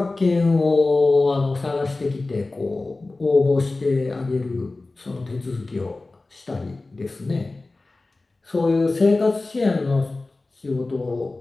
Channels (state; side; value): quieter; right; 3.3 dB